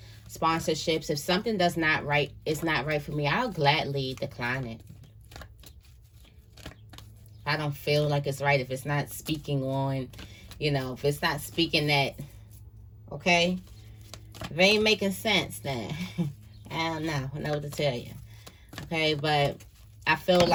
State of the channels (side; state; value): both; identical; correlation 1.00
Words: sponsorships. If something is not right for me, I'll gladly decline it. I don't feel like it's right if it's not speaking on, if it's not speaking that, okay? If it ain't making sense, then I don't know. I know what to tell you. Okay, but I feel